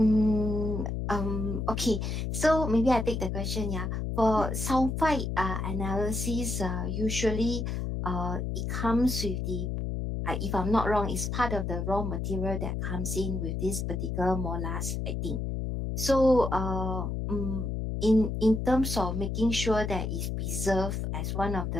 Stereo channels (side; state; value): left; noise; hum, 2 dB below the sound